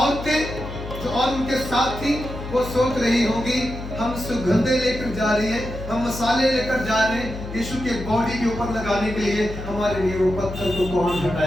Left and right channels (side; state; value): left; noise; hum, 9 dB below the sound